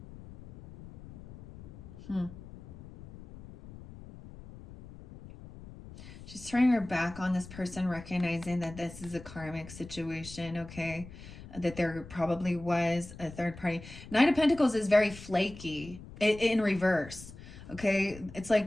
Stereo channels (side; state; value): left; noise; rumble, 16 dB below the sound